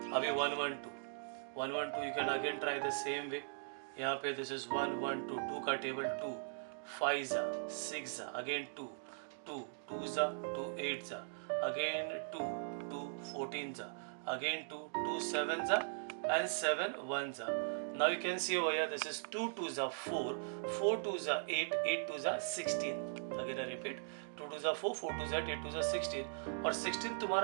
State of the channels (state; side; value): silent; left; digital silence